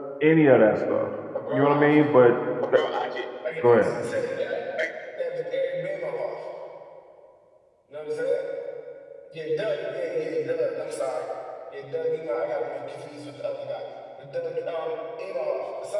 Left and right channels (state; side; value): identical; both; correlation 1.00